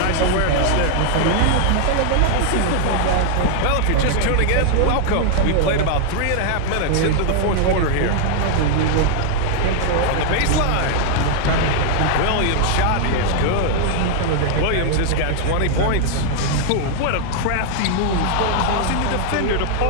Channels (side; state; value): both; different; correlation 0.00